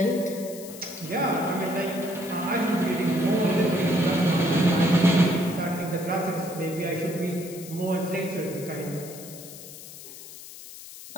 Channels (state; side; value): noise; left; hiss, 15 dB below the sound